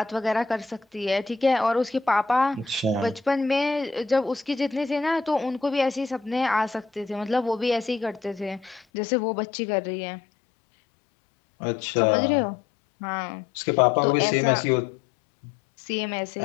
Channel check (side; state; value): right; drops out; at 8.8 s